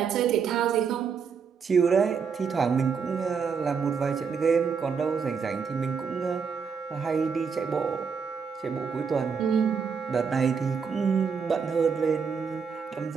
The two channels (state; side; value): quieter; left; 6.1 dB